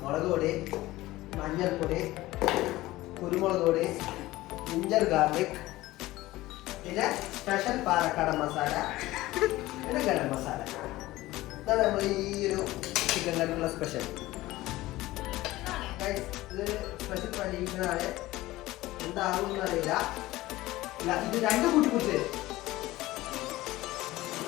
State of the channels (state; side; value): quieter; right; 17.7 dB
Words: മുളക് പൊടി, മഞ്ഞൾപ്പൊടി, കുരുമുളക് പൊടി, ജിഞ്ചർ ഗാർലിക്, പിന്നെ സ്പെഷ്യൽ പാലക്കാടൻ മസാല, പിന്നെ ഗരം മസാല. ഇതാണ് നമ്മൾ ഈ ഒരു ചിക്കൻ കറിക്കുള്ള സ്പെഷ്യൽ. ഇതൊരു സ്പെഷ്യൽ പരീക്ഷണമാണ്. എന്താകുമെന്ന് അറിയില്ല. ഇത് രണ്ടും കൂട്ടി കുറിച്ച്